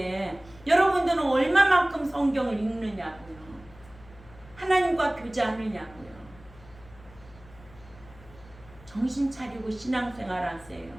여러분들은 얼마만큼 성경을 읽느냐고요. 하나님과 교제하느냐고요. 정신 차리고 신앙생활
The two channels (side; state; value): left; noise; hum, 22 dB below the sound